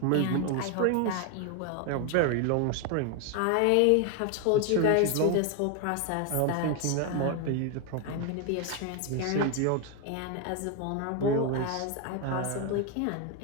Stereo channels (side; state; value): both; different; correlation 0.01